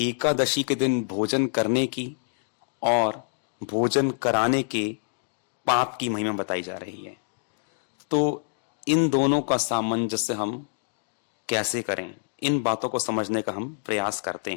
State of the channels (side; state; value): right; silent; digital silence